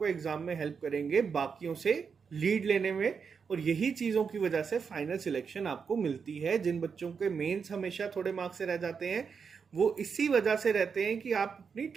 एग्जाम में हेल्प करेंगे बाकियों से लीड लेने में। और यही चीज़ों की वजह से फाइनल सिलेक्शन आपको मिलती है। जिन बच्चों के मेंस हमेशा थोड़े मार्क्स से रह जाते हैं वो इसी वजह से रहते हैं कि आप अपनी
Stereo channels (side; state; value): left; quieter; 6.0 dB